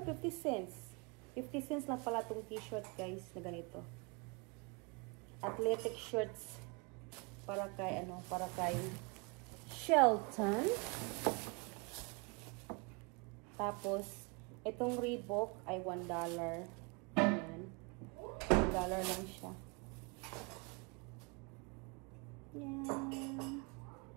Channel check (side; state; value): left; quieter; 30.8 dB